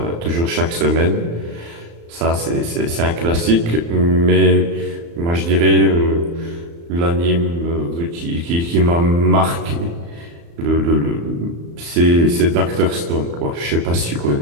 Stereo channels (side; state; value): left; late; 35 ms